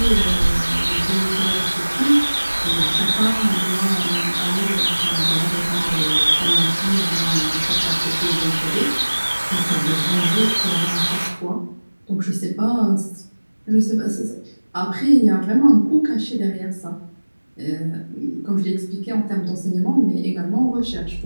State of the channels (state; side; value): inverted; both; correlation -1.00